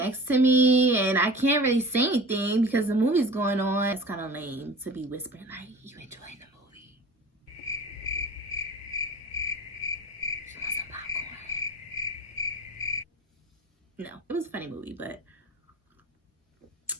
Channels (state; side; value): normal; both; correlation 0.39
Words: to me and I can't really say anything because the movie's going on. It's kind of lame to be whispering like, you enjoying the movie? You want some popcorn? No, it was a funny movie, but